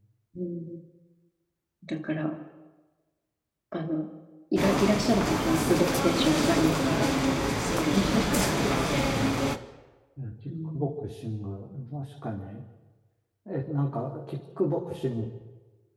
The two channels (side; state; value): both; identical; correlation 1.00